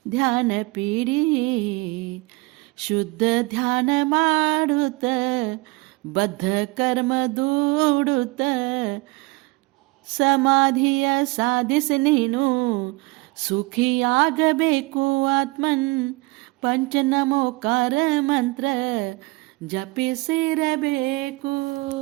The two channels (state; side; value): quieter; left; 24.9 dB